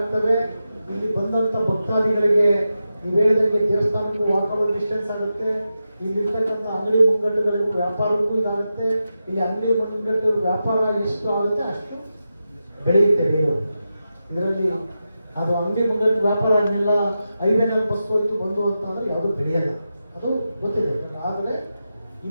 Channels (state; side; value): inverted; both; correlation -0.90